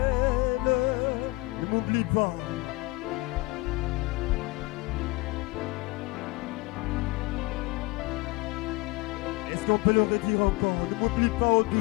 Ne m'oublie pas. Est-ce qu'on peut le redire encore? Ne m'oublie pas, ô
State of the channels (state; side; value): quieter; right; 23.6 dB